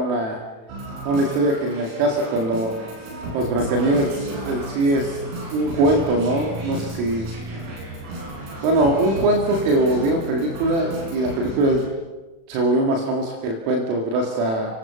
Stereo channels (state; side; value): late; left; 36 ms